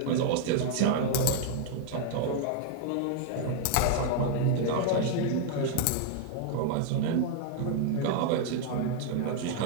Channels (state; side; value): different; both; correlation 0.00